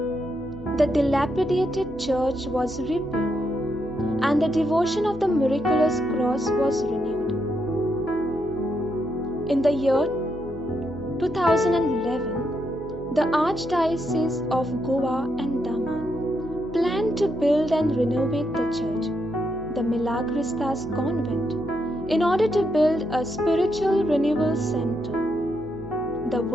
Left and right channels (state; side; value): noise; right; hum, 18 dB below the sound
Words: The dilapidated church was rebuilt, and the devotion of the miraculous cross was renewed. In the year 2011, the Archdiocese of Goa and Daman planned to build and renovate the church, the Milagristas Convent, in order to build a spiritual renewal center. The